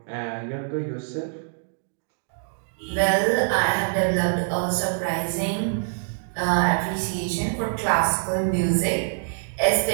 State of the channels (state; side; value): silent; left; digital silence